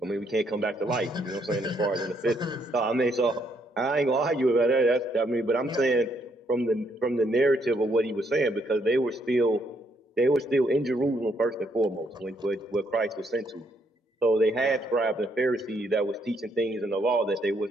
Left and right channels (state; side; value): normal; both; correlation 0.72